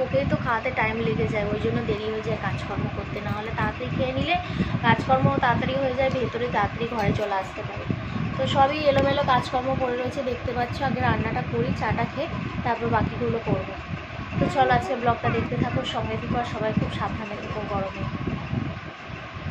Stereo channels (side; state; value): both; identical; correlation 1.00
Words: ওকেই তো খাওয়াতে টাইম লেগে যায়, ওই জন্য দেরি হয়ে যায় কাজকর্ম করতে। না হলে তাড়াতাড়ি খেয়ে নিলে কাজকর্ম তাড়াতাড়ি হয়ে যায়, ভেতরে তাড়াতাড়ি ঘরে চলে আসতে পারে। তো সবই এলোমেলো কাজকর্ম পড়ে রয়েছে, দেখতে পাচ্ছ। আগে রান্নাটা করি, চাটা খেয়ে তারপর বাকিগুলো করবো। তো চলো আজকে ব্লগটা দেখতে থাকো, সঙ্গে থেকো, আর সবাই খুব সাবধানে থেকো গরমে।